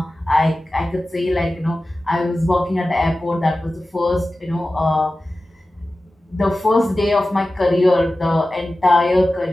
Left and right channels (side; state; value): both; normal; correlation 0.95